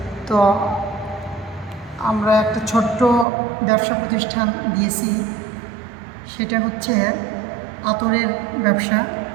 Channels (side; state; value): left; drops out; at 3.2 s